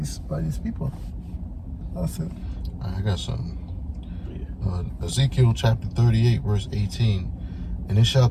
these people. That's it. I got something. Ezekiel chapter 38, verse 18. And it shall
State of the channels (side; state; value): both; identical; correlation 1.00